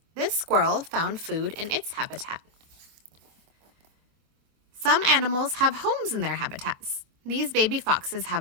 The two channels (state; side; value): late; left; 25 ms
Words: This squirrel found food in its habitat. Some animals have homes in their habitats. These baby foxes